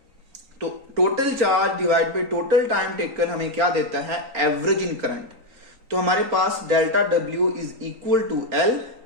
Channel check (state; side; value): late; left; 3.9 ms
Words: तो total charge divide by total time taken हमें क्या देता है, एवरेज इन करंट। तो हमारे पास delta W is equal to L